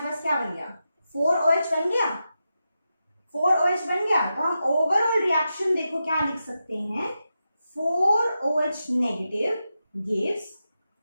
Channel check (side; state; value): both; inverted; correlation -0.89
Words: पास क्या बन गया, 4OH बन गया, 4OH बन गया। तो हम ओवरऑल रिएक्शन देखो क्या लिख सकते हैं, 4OH नेगेटिव गिव्स